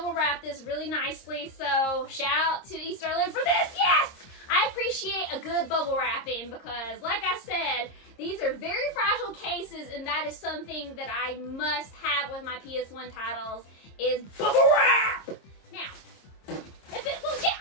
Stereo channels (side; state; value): right; late; 26 ms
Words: wrapped this really nicely, so shout out to EStarLand for this. Yes! I appreciate a good bubble wrapping because, like I said, these are very fragile cases, and that is something that I must have with my PS1 titles is bubble wrap! Now, if it will get